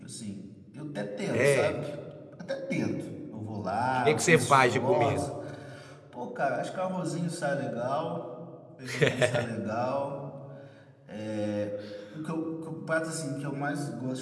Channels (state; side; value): identical; both; correlation 1.00